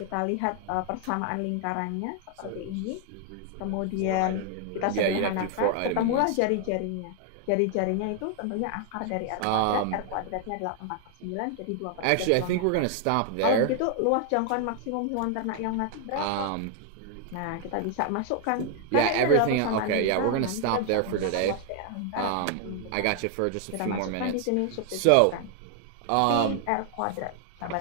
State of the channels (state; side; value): different; both; correlation 0.00